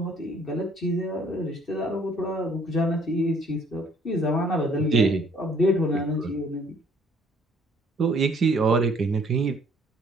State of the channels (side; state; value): both; normal; correlation 0.60